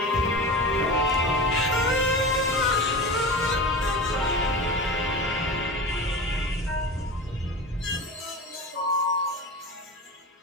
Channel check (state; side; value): normal; both; correlation 0.30